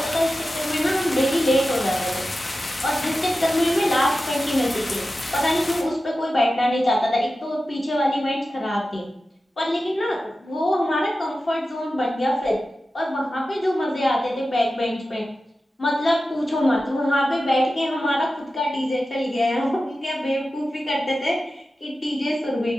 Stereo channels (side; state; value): both; normal; correlation 0.93